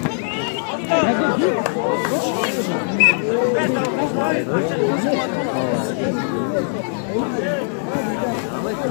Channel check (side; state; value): right; silent; digital silence